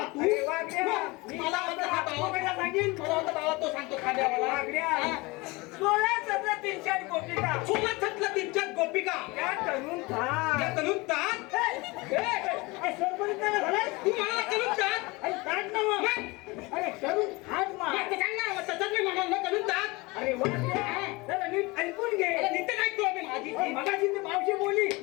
तू मला वाटतं हा बाबा सांगेल, मला वाटतं बाबा तो सांगतो खाद्यावाला. 16-17 गोपिका, 16-17 गोपिका त्या तरुण तात तू मला तरुण तात अरे तरुण हात मार सांग ना, तसंच मी म्हणाल तरुण तात. अरे वा, नीट ऐकून घे. नीट ऐकतो आम्ही. माझी मगाशी ती मावशी बोलली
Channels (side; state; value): right; quieter; 24.0 dB